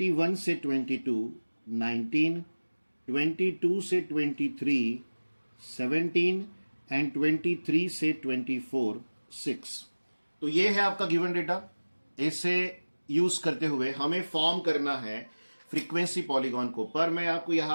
से 22, 19, 22 से 23, 17 एंड 23 से 24, 6। तो ये है आपका गिवन डेटा। इसे यूज करते हुए हमें फॉर्म करना है फ्रीक्वेंसी पॉलीगॉन को। पर मैं आपको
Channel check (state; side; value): inverted; both; correlation -1.00